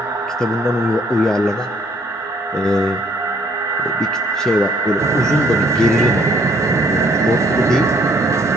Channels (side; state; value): both; normal; correlation 0.63